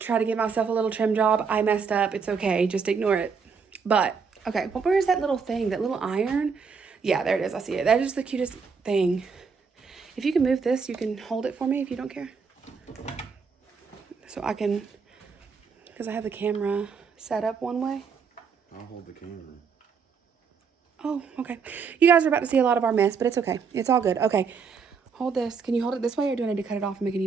to give myself a little trim job. I messed up. It's okay. Just ignore it. But, okay. Well, where is that little thing? That little iron? Yeah, there it is. I see it. That is the cutest thing. If you can move this, you can hold it for me if you don't care. So I can, because I have the camera set up one way. I'll hold the camera. Oh, okay. You guys are about to see a lot of our mess, but it's okay. It's all good. Okay. Hold this. Can you hold it this way, or do I need to cut it off and make a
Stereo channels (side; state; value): left; quieter; 5.7 dB